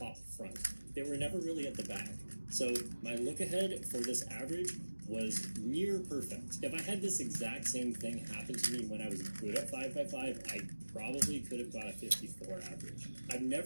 front. They were never really at the back. So my look ahead for this average was near perfect. If I had this exact same thing happen to me when I was good at 5x5, I probably could have got a 54 average. I've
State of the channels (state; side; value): inverted; both; correlation -1.00